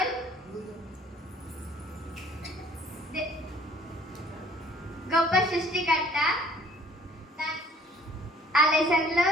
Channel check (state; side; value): normal; both; correlation 0.56